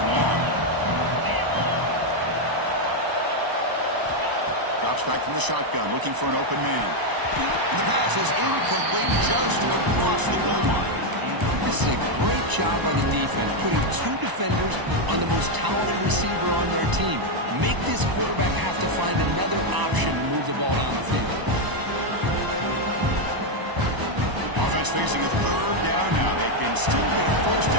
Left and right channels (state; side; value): late; left; 1.0 ms